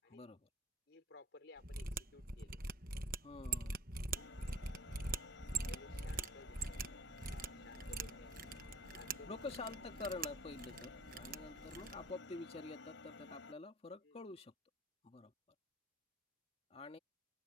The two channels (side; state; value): both; normal; correlation 0.51